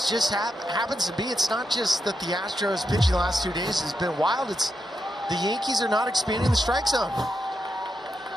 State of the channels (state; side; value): normal; both; correlation 0.84